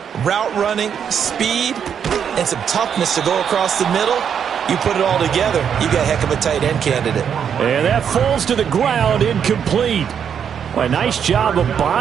route running, speed, and some toughness to go across the middle, you put it all together, you got a heck of a tight end candidate. And that falls to the ground, incomplete. Well, a nice job of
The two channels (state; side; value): quieter; left; 7.9 dB